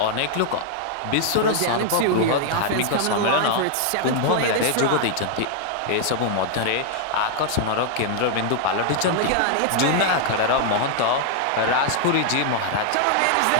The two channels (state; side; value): different; both; correlation -0.01